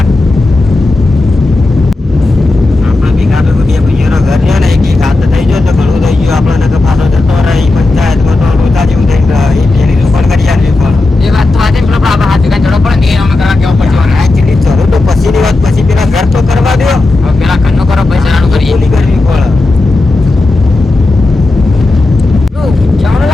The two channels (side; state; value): right; quieter; 3.1 dB